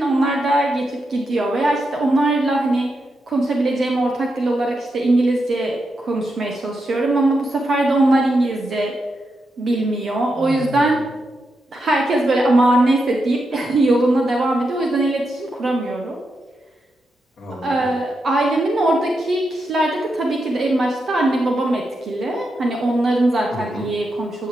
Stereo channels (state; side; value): normal; both; correlation 0.85